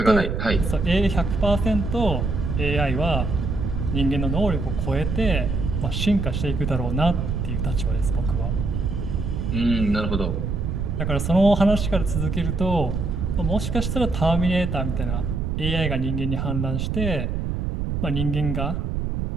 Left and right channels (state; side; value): noise; right; rumble, 1 dB below the sound